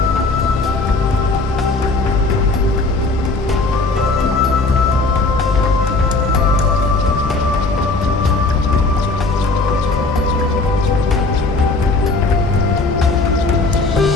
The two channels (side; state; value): right; quieter; 3.4 dB